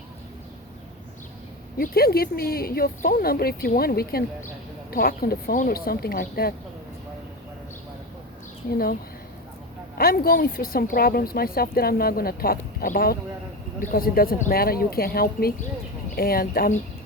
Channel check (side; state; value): both; normal; correlation 0.21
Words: You can give me your phone number if you want. We can talk on the phone or something like that. You know, I'm going through some problems myself that I'm not going to talk about because it doesn't matter. You can't help me, and